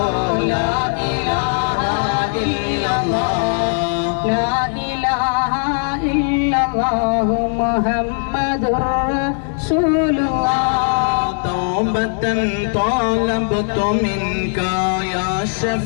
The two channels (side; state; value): right; silent; 66 dB below the other